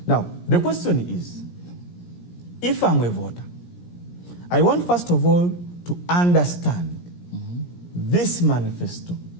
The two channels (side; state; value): right; late; 17 ms